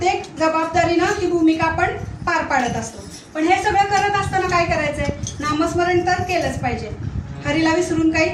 जबाबदारीनं ती भूमिका आपण पार पाडत असतो. पण हे सगळं करत असताना काय करायचंय? नामस्मरण तर केलंच पाहिजे. हरीला विसरून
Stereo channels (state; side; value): identical; both; correlation 1.00